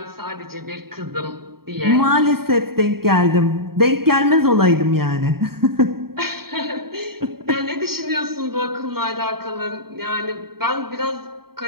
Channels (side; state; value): left; late; 0.94 ms